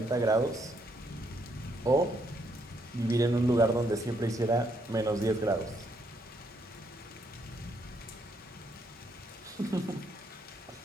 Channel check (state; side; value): normal; both; correlation 0.73